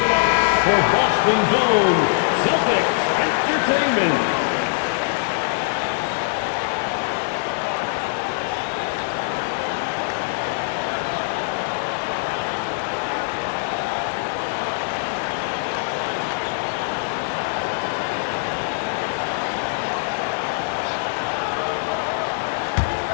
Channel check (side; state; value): right; silent; digital silence